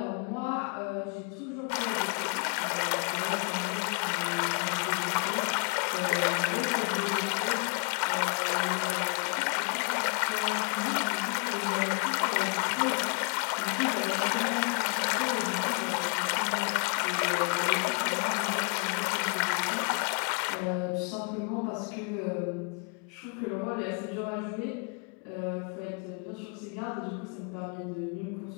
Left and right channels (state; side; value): quieter; right; 37.6 dB